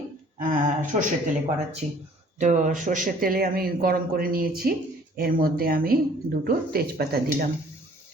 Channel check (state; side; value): normal; both; correlation 0.55